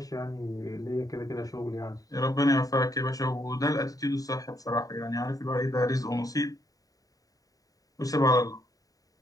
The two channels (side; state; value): right; late; 0.17 ms